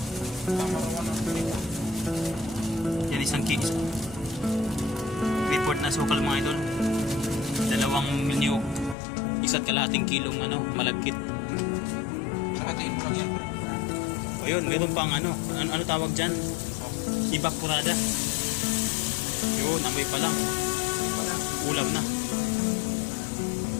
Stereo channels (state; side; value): drops out; right; at 9.0 s